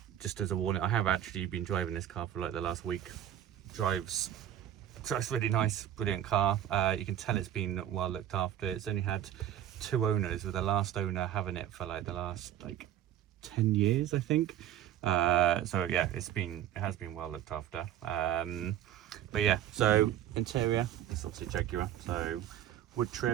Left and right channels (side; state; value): left; quieter; 11.4 dB